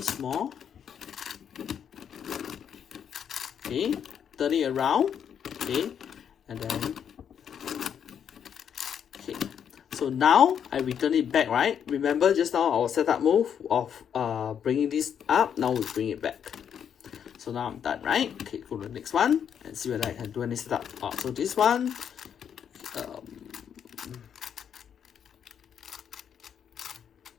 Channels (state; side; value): quieter; right; 8.3 dB